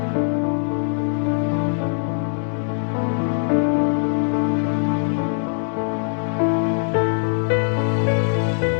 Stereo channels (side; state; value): right; silent; 61 dB below the other